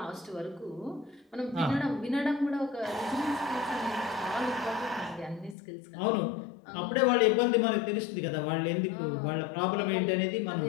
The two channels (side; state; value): right; drops out; at 5.6 s